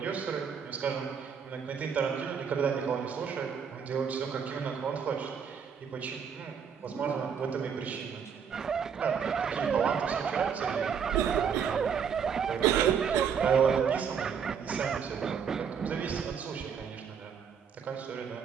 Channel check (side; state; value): left; quieter; 7.0 dB